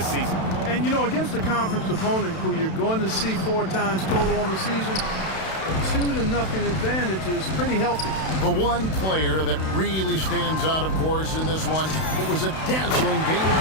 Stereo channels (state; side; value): late; right; 32 ms